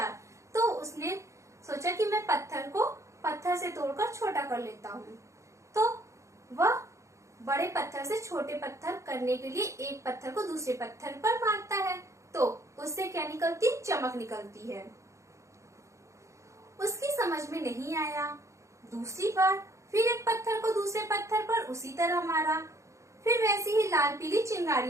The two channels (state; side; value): late; left; 0.15 ms